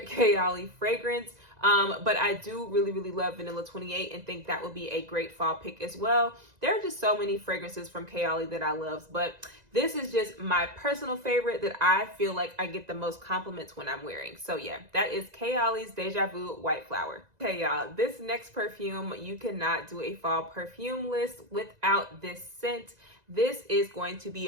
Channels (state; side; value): late; left; 2.0 ms